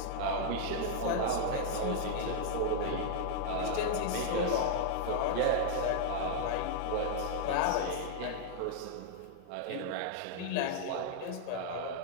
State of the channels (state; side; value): different; both; correlation 0.00